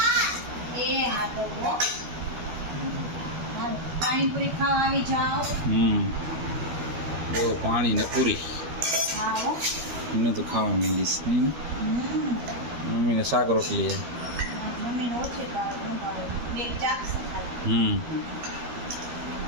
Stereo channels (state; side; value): late; left; 12 ms